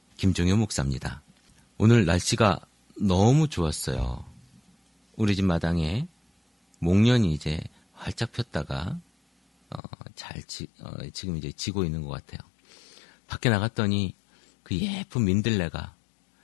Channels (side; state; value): right; drops out; at 9.8 s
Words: 김종효 목사입니다. 오늘 날씨가 너무 좋았어요. 우리 집 마당에 목련이 이제 활짝 폈다가 지금 이제 지고 있는 것 같아요. 밖에 나갔더니 그 예쁜 민들레가